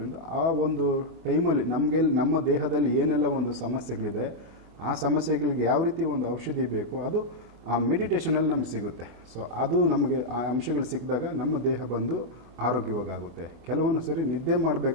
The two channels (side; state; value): left; late; 24 ms